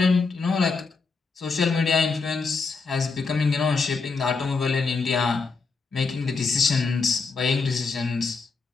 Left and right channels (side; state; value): right; quieter; 4.4 dB